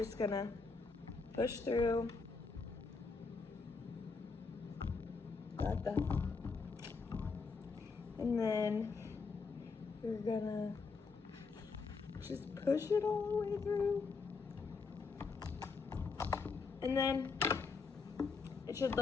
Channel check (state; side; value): quieter; right; 4.6 dB